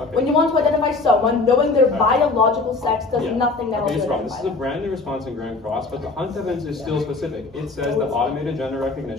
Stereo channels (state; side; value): quieter; right; 3.7 dB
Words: When you want to identify someone, knowing their biological sex does nothing else. Okay, this is a brand new response in Grand Cross, but the Hunt evidence is still specific. It says that automated gender